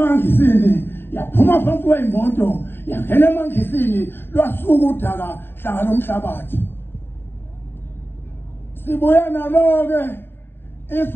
yaphuma phansi kweyimoto yangena emangisini lwasuka udaka hlangana lomhlabathi. Sibuya nalo-ke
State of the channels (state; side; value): late; right; 0.10 ms